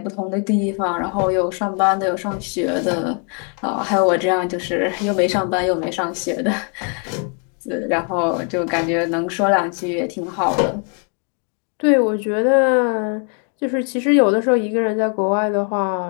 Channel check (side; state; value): right; quieter; 39.5 dB